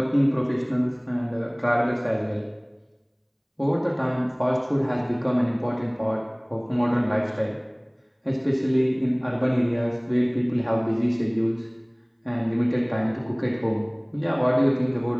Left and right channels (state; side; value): identical; both; correlation 1.00